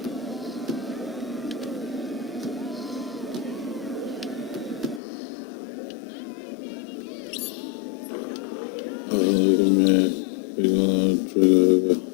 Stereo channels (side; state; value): right; drops out; at 5.0 s